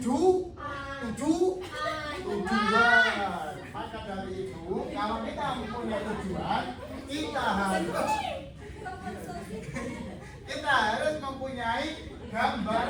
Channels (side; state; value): both; identical; correlation 1.00